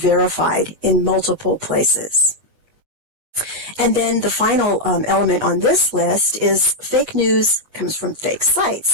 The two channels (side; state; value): left; late; 7.8 ms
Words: in multiple places. And then the final element on this list is fake news comes from fake